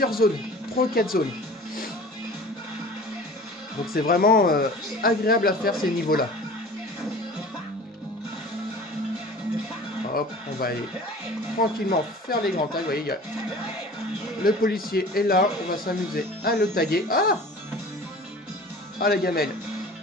zones. 3 ou 4 zones. Donc c'est vraiment agréable à faire ces niveaux-là. Hop, on va aller tranquillement faire les grands tags. Vous voyez, le policier est là. On va s'amuser à le taguer. Ah! Ah, la gamelle.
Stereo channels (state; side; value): normal; both; correlation 0.42